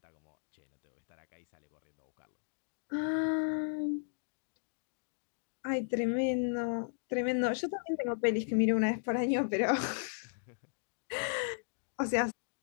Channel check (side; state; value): right; silent; digital silence